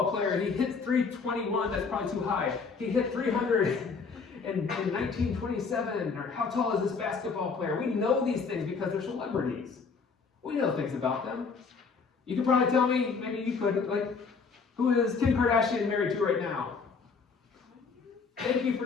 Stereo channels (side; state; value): right; quieter; 5.0 dB